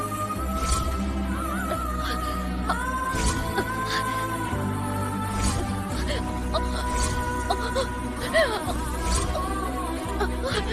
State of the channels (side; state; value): both; identical; correlation 1.00